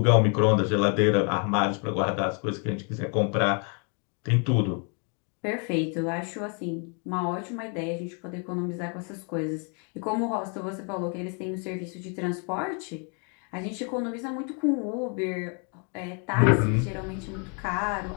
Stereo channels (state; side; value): quieter; right; 38.6 dB